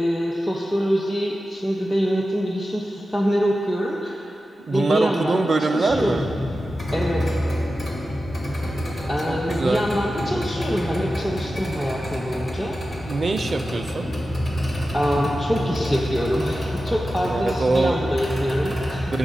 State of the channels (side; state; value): both; normal; correlation 0.93